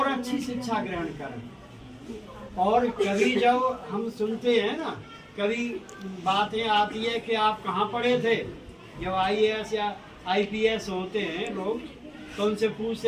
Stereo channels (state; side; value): identical; both; correlation 1.00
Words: अच्छी शिक्षा ग्रहण करें। और कभी जब हम सुनते हैं ना, कभी बातें आती है कि आप कहाँ पढ़े थे, जब IAS या IPS होते हैं लोग तो उनसे पूछते